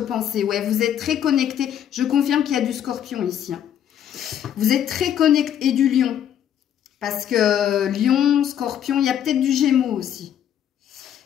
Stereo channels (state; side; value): quieter; right; 9.9 dB